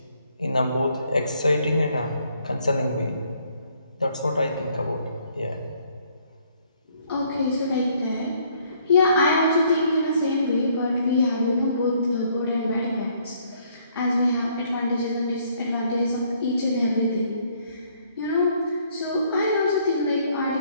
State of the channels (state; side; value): inverted; both; correlation -0.66